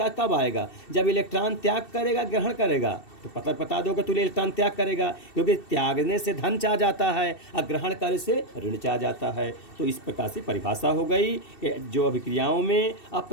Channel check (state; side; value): late; right; 2.7 ms